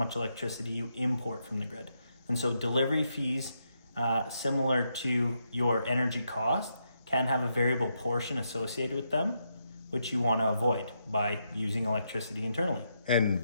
electricity you import from the grid. And so delivery fees, similar to your energy cost, can have a variable portion associated with them, which you want to avoid by using electricity internally.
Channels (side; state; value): both; inverted; correlation -0.81